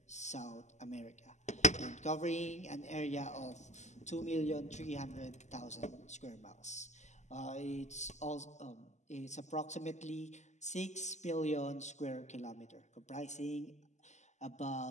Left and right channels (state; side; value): late; right; 0.34 ms